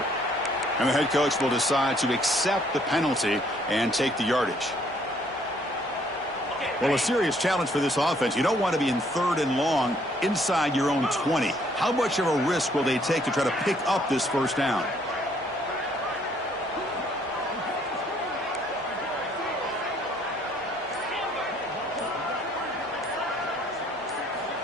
And the head coach will decide to accept the penalty and take the yardage. Well, a serious challenge for this offense. You don't want to be in 3rd and long inside your own 20. How much of a risk will they take to try to pick up this first down?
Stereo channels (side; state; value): both; normal; correlation 0.64